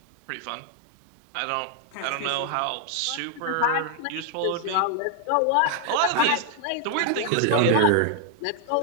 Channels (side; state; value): both; different; correlation 0.00